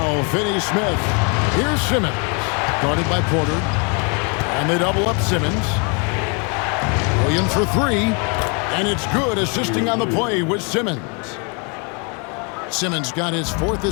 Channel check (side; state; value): right; quieter; 35.3 dB